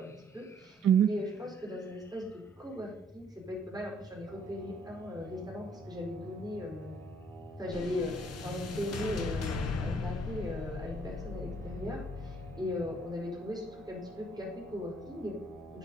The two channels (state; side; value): normal; both; correlation 0.64